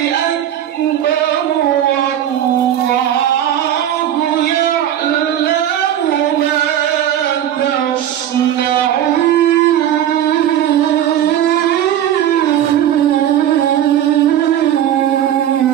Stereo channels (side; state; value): left; quieter; 11.0 dB